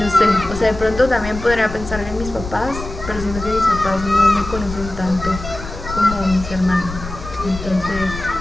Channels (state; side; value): noise; left; rumble, 10 dB below the sound